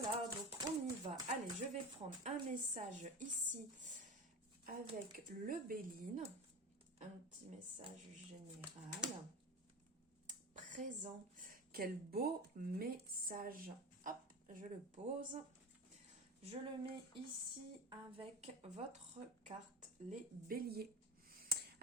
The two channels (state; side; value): normal; both; correlation 0.27